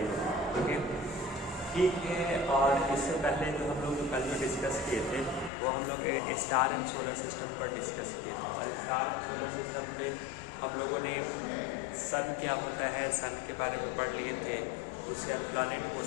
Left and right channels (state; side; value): drops out; right; at 5.5 s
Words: है। ओके, ठीक है। और इससे पहले जो हम लोग कल जो डिस्कस किए थे वो हम लोग स्टार एंड सोलर सिस्टम पर डिस्कस किए थे। और स्टार एंड सोलर सिस्टम पे हम लोगों ने सन क्या होता है, सन के बारे में पढ़ लिए थे। उसके बाद प्लानिट